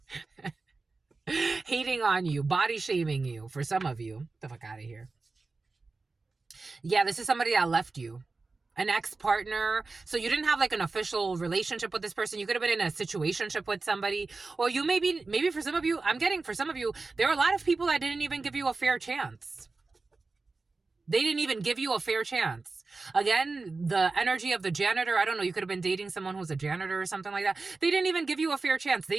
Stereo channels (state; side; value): quieter; left; 3.8 dB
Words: hating on you, body shaming you for some of you. Get the fuck out of here. Yeah, this is somebody that left you. An ex-partner. So you didn't have like an official relationship with this person. You could have been in a situationship with somebody. Or you maybe for some of you, for some of you, there are a lot of people that didn't even give you a fair chance. They didn't even give you a fair chance. Again, the energy of the janitor, I don't know, you could have been dating someone who's a janitor or something like that. They didn't even give you a fair chance. They